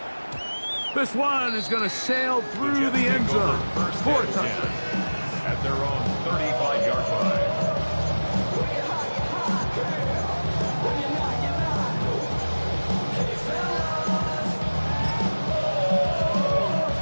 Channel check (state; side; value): inverted; both; correlation -1.00